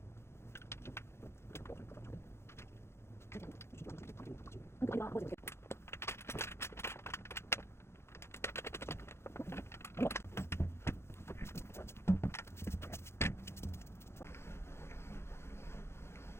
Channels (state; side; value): late; right; 0.12 ms